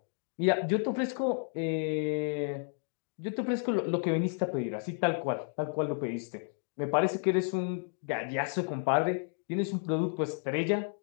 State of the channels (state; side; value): silent; right; 57 dB below the other